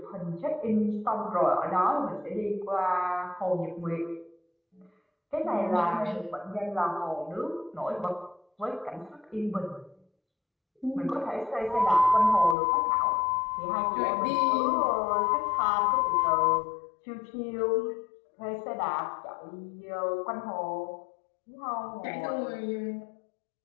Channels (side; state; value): right; drops out; at 12.6 s